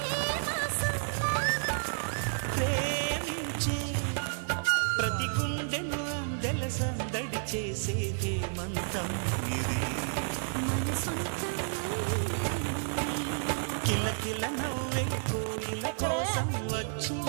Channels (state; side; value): silent; left; digital silence